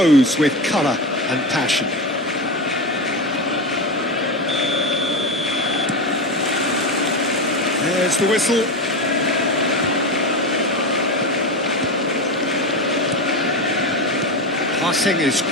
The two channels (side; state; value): both; normal; correlation 0.18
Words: with colour and passion. There's the whistle. Passing is